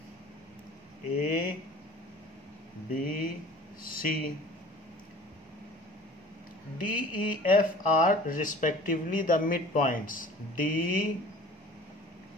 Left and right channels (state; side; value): normal; both; correlation 0.45